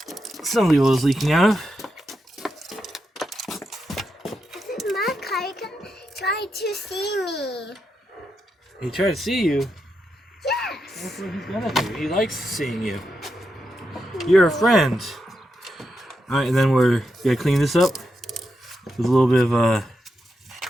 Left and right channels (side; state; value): both; normal; correlation 0.85